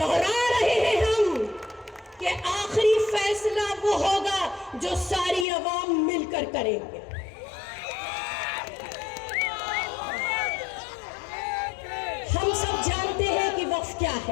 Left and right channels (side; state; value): right; drops out; at 5.5 s